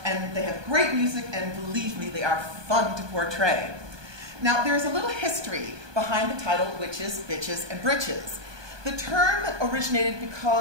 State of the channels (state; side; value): late; left; 1.2 ms